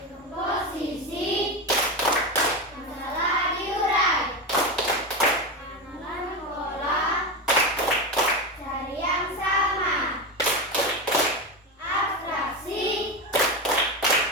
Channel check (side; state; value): both; normal; correlation 0.17